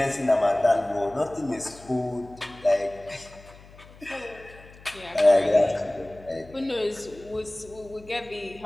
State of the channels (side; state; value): left; noise; hum, 22 dB below the sound